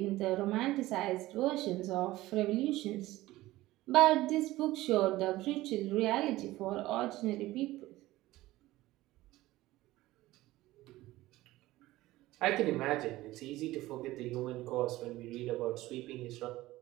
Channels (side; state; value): left; quieter; 17.4 dB